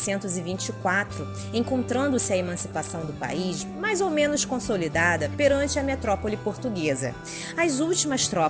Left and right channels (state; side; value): identical; both; correlation 1.00